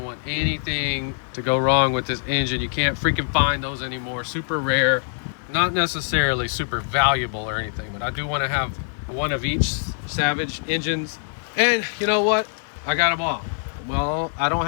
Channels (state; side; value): silent; right; 59 dB below the other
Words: want anything to go wrong with this engine. You can't freaking find those anymore. Super rare, not necessarily super valuable or anything, but I do want to have one of each Savage engines. And you know what? I got them all. Well, I don't